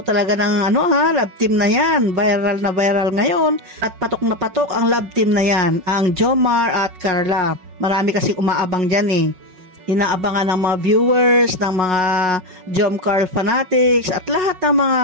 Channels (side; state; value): left; late; 5.4 ms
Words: talaga ng love team na yan. Viral na viral ngayon. At patok na patok ang love team na yan, ang Jomar at Carla. Marami kasing umaabang dyan eh. Inaabangan ng mga viewers, ng mga Jomcar fanatics, at lahat ng mga